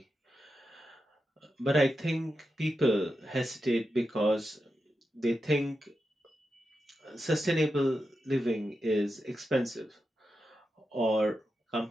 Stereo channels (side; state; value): both; normal; correlation 0.89